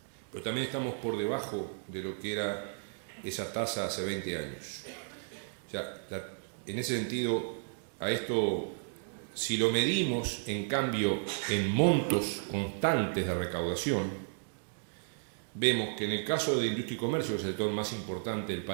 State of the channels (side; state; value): left; silent; digital silence